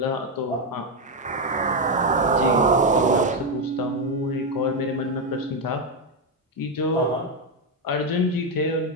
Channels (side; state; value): both; normal; correlation 0.05